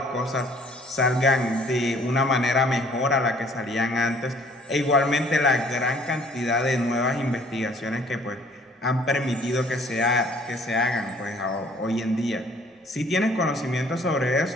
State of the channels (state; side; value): normal; both; correlation 0.57